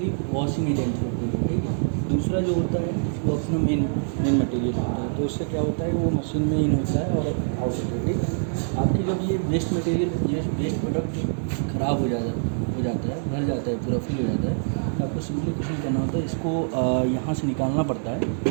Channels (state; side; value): silent; left; digital silence